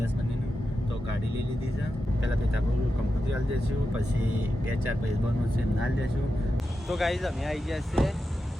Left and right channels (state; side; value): normal; both; correlation 0.89